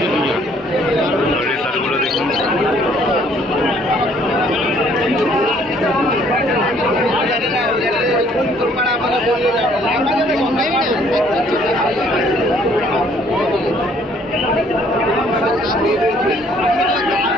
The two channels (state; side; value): normal; both; correlation 0.62